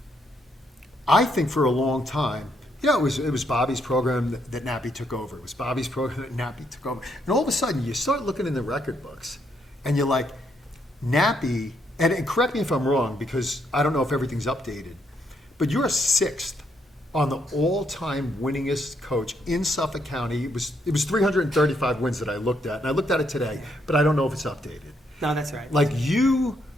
I think for a long time, it was Bobby's program that Nappy took over. It was Bobby's program that Nappy took over. And all of a sudden, you start looking in the record books, and you're like, Nappy. And correct me if I'm wrong, because I don't know if everything's updated, but you're 6th on the all-time winningest coach in Suffolk County. It was 335 wins that I looked at, and I looked at it today, but I don't know if it's updated. No, that's right. Like, you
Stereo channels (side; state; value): both; normal; correlation 0.75